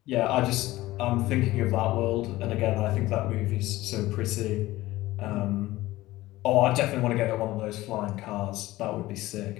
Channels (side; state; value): right; quieter; 17.5 dB